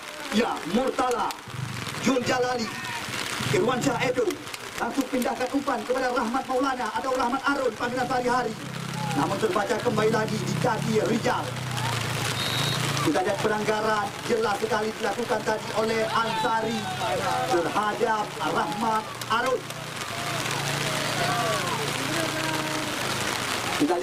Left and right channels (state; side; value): identical; both; correlation 1.00